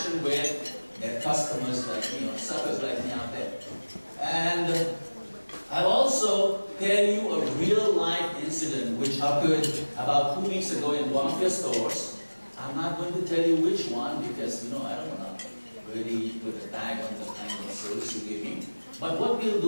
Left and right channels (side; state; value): both; inverted; correlation -1.00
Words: with their customers like me, or suckers like me out there. And I'll also tell you a real-life incident which occurred about 2 weeks ago in one of your stores. I'm not going to tell you which one because, I don't want to really put a tag on the kind of service you give me. But what we'll